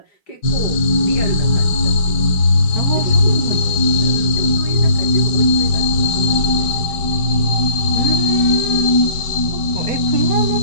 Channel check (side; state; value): right; late; 5.2 ms